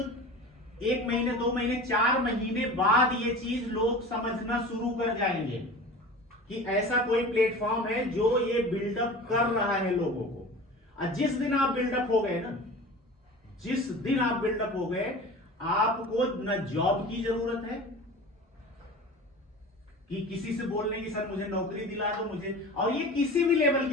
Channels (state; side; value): normal; both; correlation 0.36